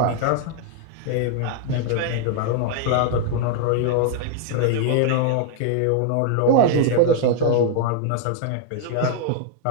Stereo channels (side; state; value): both; different; correlation 0.00